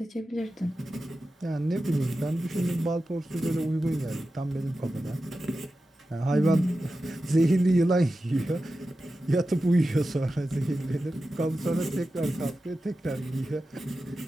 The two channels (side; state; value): both; normal; correlation 0.93